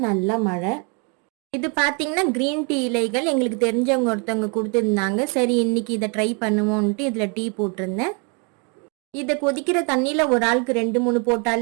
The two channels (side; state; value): left; quieter; 35.5 dB